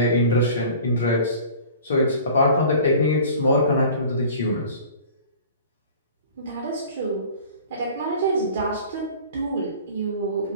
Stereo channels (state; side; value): inverted; both; correlation -0.44